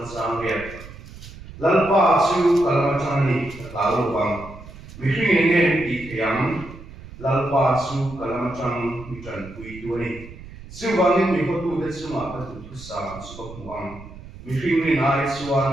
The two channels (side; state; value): right; noise; rumble, 16 dB below the sound